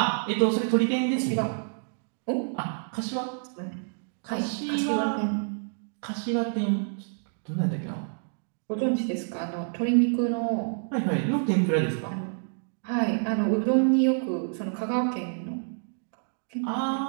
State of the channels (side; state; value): left; silent; digital silence